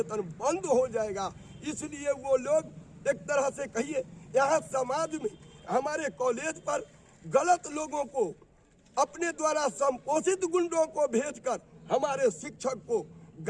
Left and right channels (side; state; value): both; identical; correlation 1.00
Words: बंद हो जाएगा। इसलिए वो लोग एक तरह से कहिए यहाँ समाज में हमारे कॉलेज पर गलत लोगों को अपने द्वारा संपोषित गुंडों को भेजकर हमारे शिक्षक को